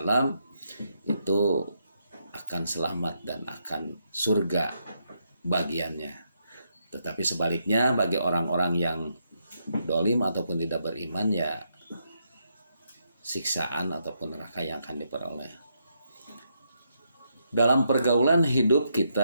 itu akan selamat dan akan surga bagiannya. Tetapi sebaliknya bagi orang-orang yang dolim ataupun tidak beriman ya siksaan ataupun neraka yang akan diperoleh. Dalam pergaulan hidup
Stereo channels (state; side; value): inverted; both; correlation -0.79